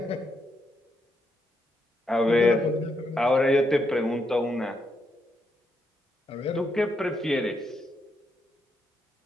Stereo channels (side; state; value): both; normal; correlation 0.79